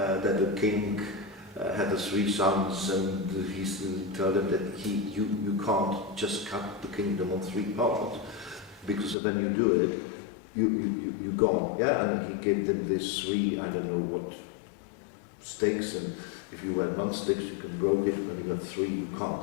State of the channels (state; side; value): drops out; right; at 9.2 s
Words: the king had the 3 sons, and he told them that you can't just cut the kingdom on 3 parts, because when you do it, you gone. Yeah, and he gave them this 3, I don't know what, stakes, and if you had 1 stick, you can broke it. When you got 3, you